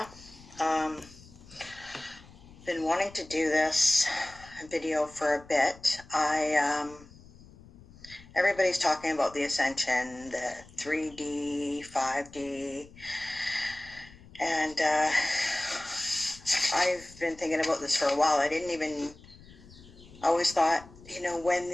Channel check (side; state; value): left; noise; rumble, 21 dB below the sound